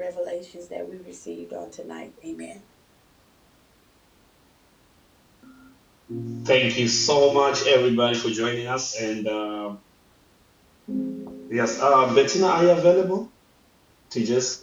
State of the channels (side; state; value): both; identical; correlation 1.00